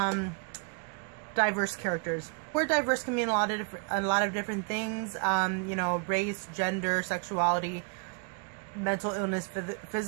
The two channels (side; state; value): left; quieter; 37.9 dB